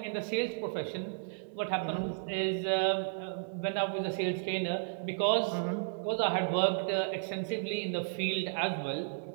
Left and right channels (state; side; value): silent; left; digital silence